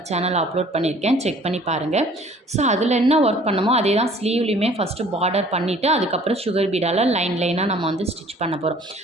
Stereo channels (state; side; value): normal; both; correlation 0.53